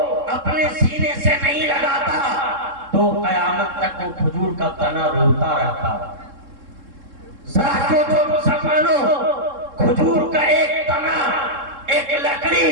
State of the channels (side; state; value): left; late; 3.7 ms